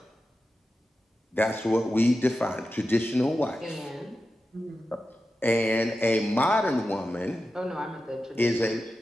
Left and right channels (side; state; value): both; normal; correlation 0.92